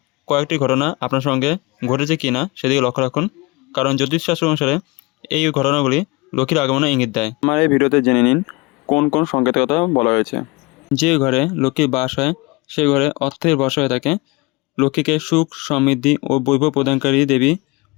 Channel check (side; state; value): right; quieter; 24.8 dB